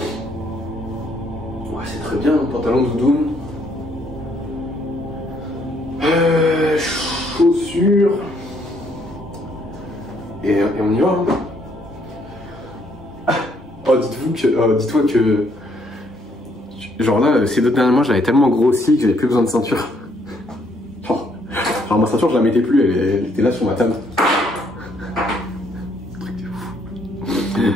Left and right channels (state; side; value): normal; both; correlation 0.69